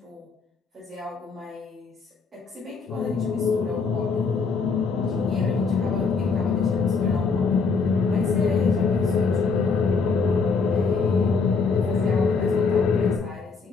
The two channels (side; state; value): right; quieter; 4.8 dB